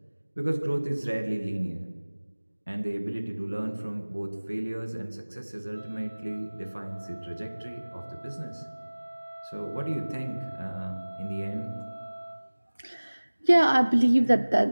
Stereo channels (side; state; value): both; inverted; correlation -1.00